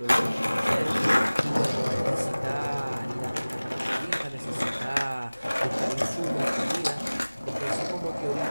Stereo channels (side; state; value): both; inverted; correlation -0.99